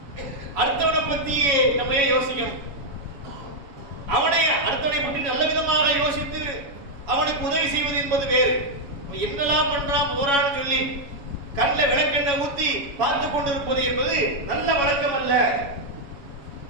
அடுத்தவனை பத்தி நம்ம ஏன் யோசிக்கணும்? அடுத்தவனை பற்றி நல்ல விதமாக யோசித்து அவனுக்கு உதவி செய்வது என்பது வேறு. என்னெல்லாம் பண்றான் போறான்னு சொல்லி கண்ணில் விளக்கெண்ணெய் ஊத்தி பார்த்து கொண்டிருப்பது என்பது நல்ல வழக்கம் அல்ல.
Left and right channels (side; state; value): left; late; 7.1 ms